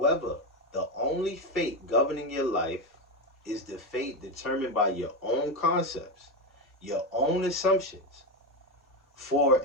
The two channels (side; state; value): both; normal; correlation 0.12